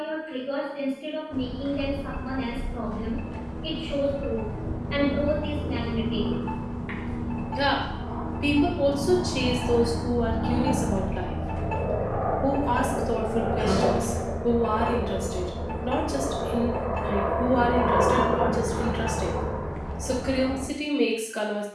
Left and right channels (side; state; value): both; identical; correlation 1.00